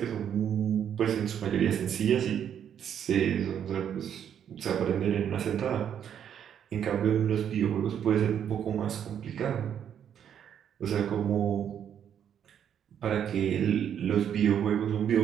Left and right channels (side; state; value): left; quieter; 9.0 dB